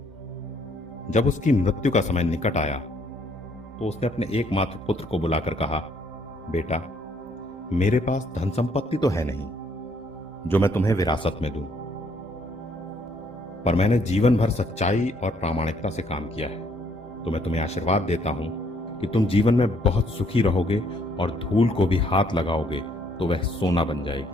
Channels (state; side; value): normal; both; correlation 0.67